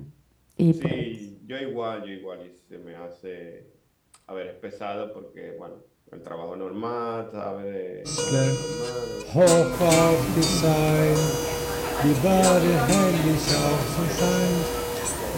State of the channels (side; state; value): both; identical; correlation 1.00